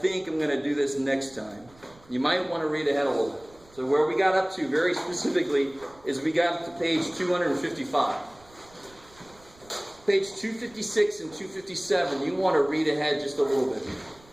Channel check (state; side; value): noise; right; rumble, 26 dB below the sound